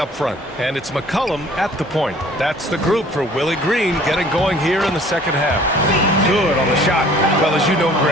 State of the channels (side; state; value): both; normal; correlation 0.53